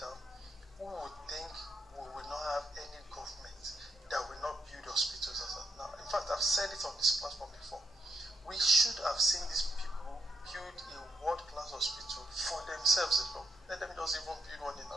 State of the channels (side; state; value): both; normal; correlation 0.76